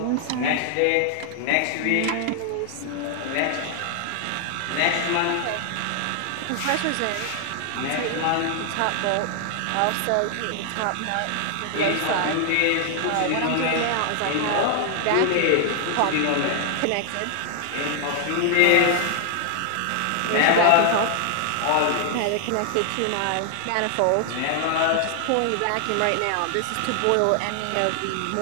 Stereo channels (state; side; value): different; both; correlation 0.00